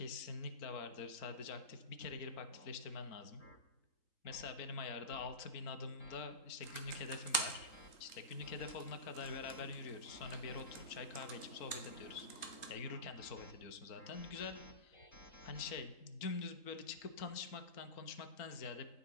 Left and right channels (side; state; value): right; late; 3.8 ms